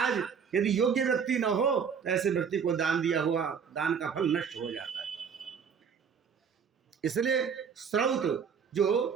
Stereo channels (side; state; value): left; quieter; 6.7 dB